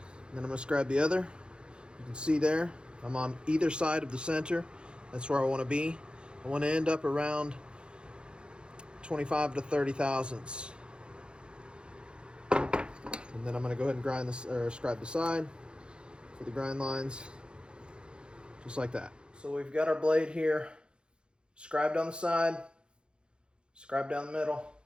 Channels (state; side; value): late; left; 0.052 ms